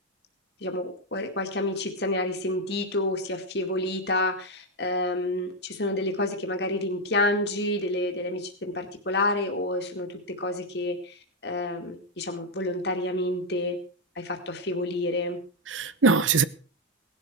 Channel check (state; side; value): normal; both; correlation 0.04